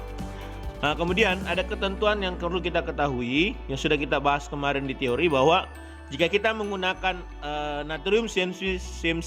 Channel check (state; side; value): identical; both; correlation 1.00